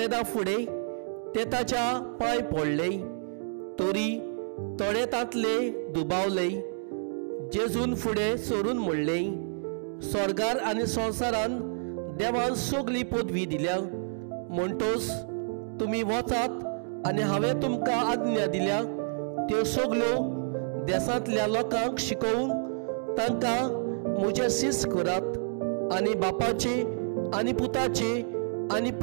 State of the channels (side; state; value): left; silent; digital silence